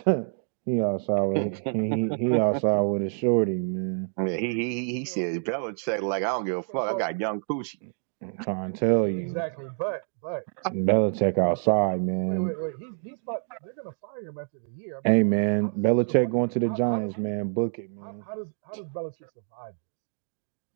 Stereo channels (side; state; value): left; silent; 60 dB below the other